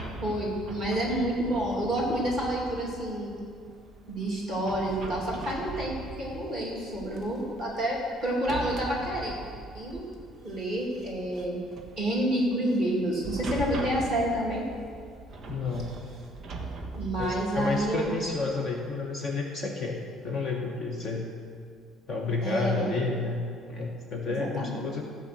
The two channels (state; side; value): normal; both; correlation 0.61